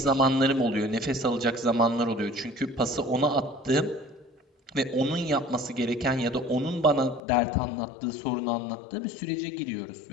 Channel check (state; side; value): drops out; right; at 7.2 s